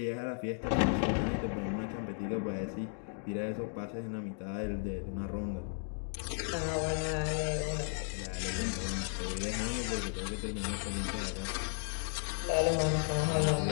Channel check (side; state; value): right; silent; 55 dB below the other